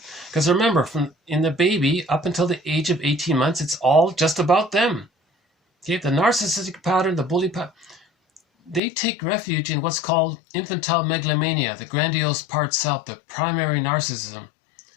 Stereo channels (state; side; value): drops out; right; at 8.8 s